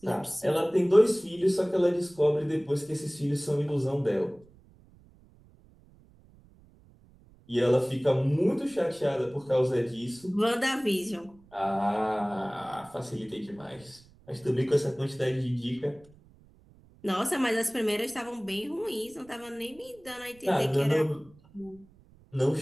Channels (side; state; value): right; noise; rumble, 27 dB below the sound